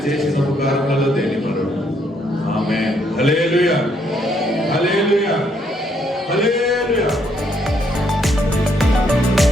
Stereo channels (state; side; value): normal; both; correlation 0.71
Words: చేసిన ఉపకారములలో దేని మరుడు. ఆమేన్. హల్లెలూయా, హల్లెలూయా, హల్లెలూయా.